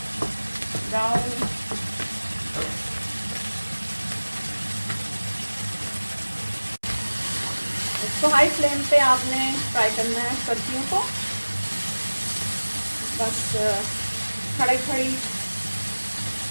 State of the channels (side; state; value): both; inverted; correlation -1.00